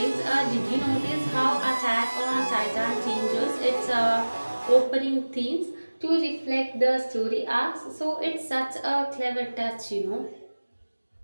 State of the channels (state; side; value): inverted; both; correlation -1.00